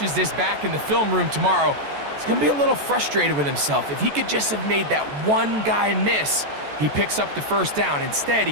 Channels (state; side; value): late; left; 14 ms